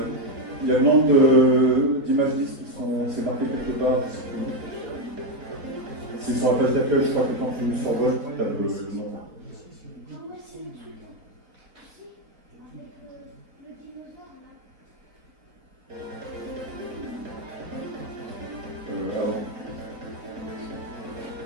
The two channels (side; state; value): left; late; 3.9 ms